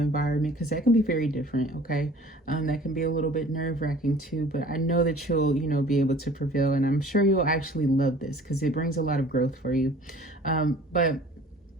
because that can be very different. Okay. That can be a little bit nerve-wracking too, but I know that you'll, you know, be able to prevail, and I'm sure you'll actually love this because it brings a lot of growth for you. But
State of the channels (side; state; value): both; normal; correlation 0.49